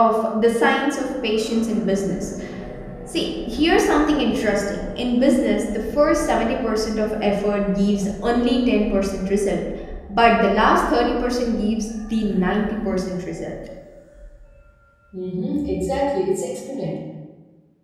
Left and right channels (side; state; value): both; identical; correlation 1.00